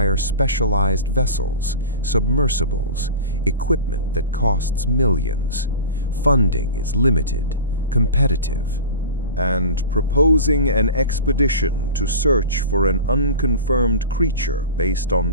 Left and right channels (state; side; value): inverted; both; correlation -0.32